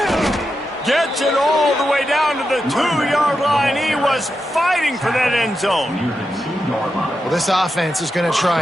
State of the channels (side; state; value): both; normal; correlation 0.88